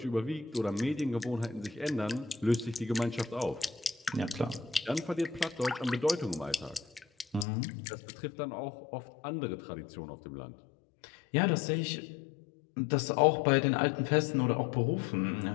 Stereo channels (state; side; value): drops out; right; at 7.5 s